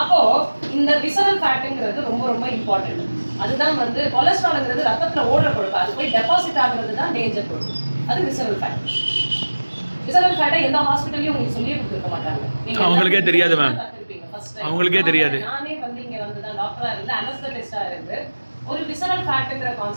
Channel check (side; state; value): both; inverted; correlation -1.00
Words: இந்த விசரல் ஃபேட்டுங்கிறது ரொம்ப ரொம்ப இம்பார்ட்டன்ட். அதுதான் வந்து கொலஸ்ட்ரால்ங்கிறது ரத்தத்துல ஓடுற கொழுப்பு. அது போய் டெபாசிட் ஆகுறது தான் டேஞ்சர் கொழுப்பு. அது விசரல் ஃபேட். விசரல் ஃபேட்டை எந்த ஹாஸ்பிட்டல்லையும் உங்களுக்கு சொல்லியே கொடுத்துருக்க மாட்டாங்க. அவங்களுக்கே தெரியாது மேம். அவங்களுக்கே தெரியாது. நானே வந்து இங்க வந்து தான் டாக்டரா இருந்து அனஸ்தெட்டிஸ்டா இருந்து ஒரு விசரல் ஃபேட்ங்கிற